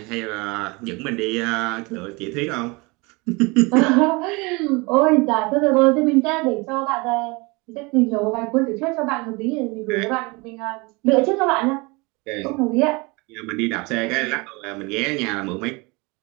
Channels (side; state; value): left; quieter; 26.5 dB